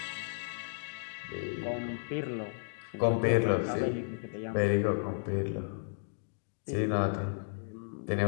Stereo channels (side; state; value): right; silent; digital silence